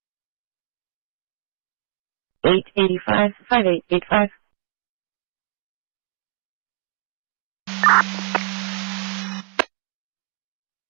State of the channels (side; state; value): left; quieter; 31.8 dB